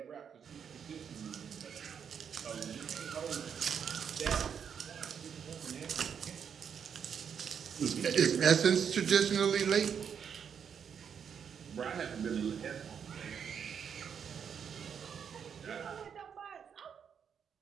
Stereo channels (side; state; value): left; quieter; 7.5 dB